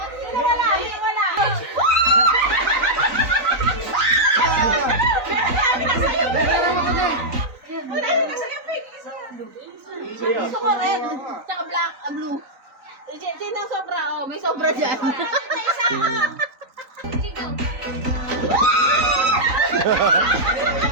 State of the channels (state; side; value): late; left; 3.9 ms